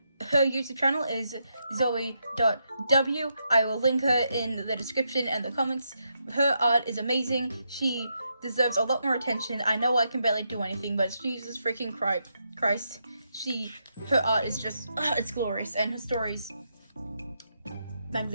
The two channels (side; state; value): both; inverted; correlation -0.81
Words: Her YouTube channel is zoe.w. I will link her in the description and the comments. Her art is amazing. She deserves a lot more attention. I know I can barely do anything, but Jesus freaking Christ. Her art is just, it's glorious, and her stories